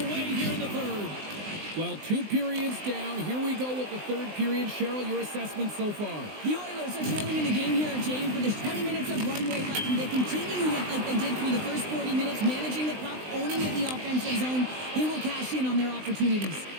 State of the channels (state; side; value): late; left; 20 ms